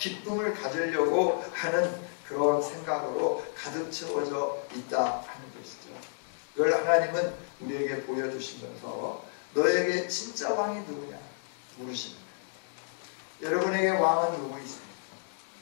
가지려고 하는 그런 생각으로 가득 채워져 있다 하는 것이죠. 이걸 하나님은 우리에게 보여주시면서 너에게 진짜 왕이 누구냐 물으시는 거예요. 여러분에게 왕은 누구 있습니까?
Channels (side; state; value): right; silent; digital silence